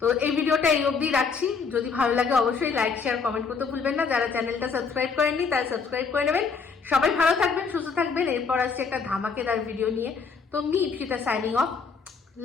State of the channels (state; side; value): quieter; right; 5.3 dB